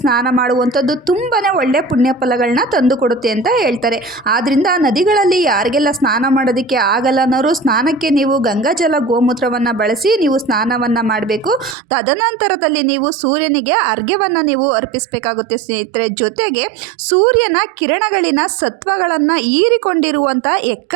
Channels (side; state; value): left; drops out; at 11.8 s